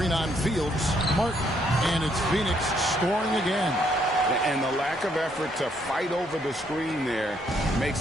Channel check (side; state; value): both; normal; correlation 0.70